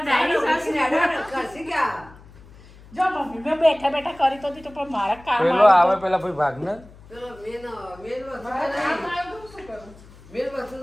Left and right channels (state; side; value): noise; left; hum, 22 dB below the sound